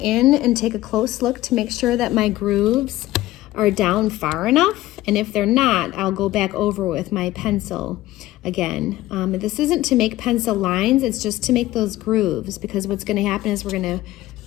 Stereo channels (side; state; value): right; quieter; 16.4 dB